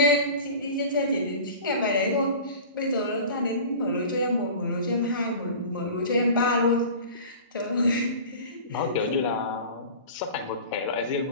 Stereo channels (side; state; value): both; inverted; correlation -0.37